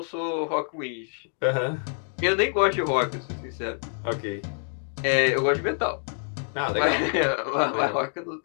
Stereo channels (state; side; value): silent; right; 57 dB below the other